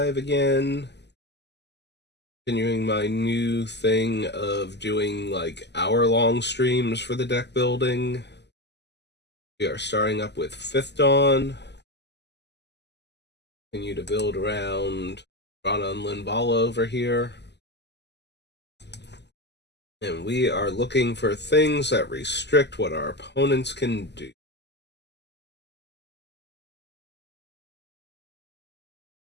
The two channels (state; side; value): late; right; 0.50 ms